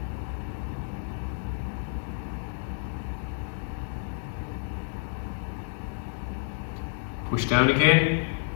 Push down again.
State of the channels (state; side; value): silent; right; digital silence